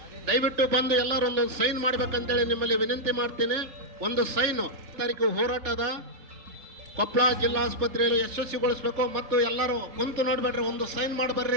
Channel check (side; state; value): left; late; 3.4 ms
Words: ದಯವಿಟ್ಟು ಬಂದು ಎಲ್ಲರೂ ಒಂದೊಂದು ಸೈನ್ ಮಾಡ್ಬೇಕಂತೇಳಿ ನಿಮ್ಮಲ್ಲಿ ವಿನಂತಿ ಮಾಡ್ತೀನಿ. ಒಂದು ಸೈನು ತಾರೀಕು ಹೋರಾಟದ ಕೊಪ್ಪಳ ಜಿಲ್ಲಾಸ್ಪತ್ರೆಯಲ್ಲಿ ಯಶಸ್ವಿಗೊಳಿಸ್ಬೇಕು. ಮತ್ತು ಎಲ್ಲರೂ ಕುಂತು ನೋಡ್ಬೇಡ್ರಿ, ಒಂದು ಸೈನ್